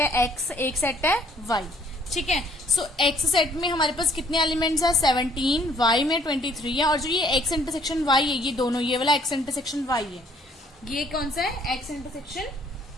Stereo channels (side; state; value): both; normal; correlation 0.62